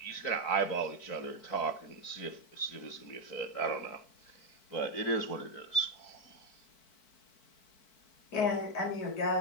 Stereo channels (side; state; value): right; late; 4.6 ms